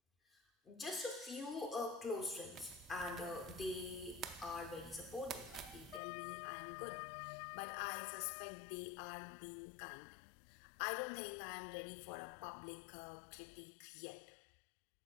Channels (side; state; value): right; drops out; at 6.0 s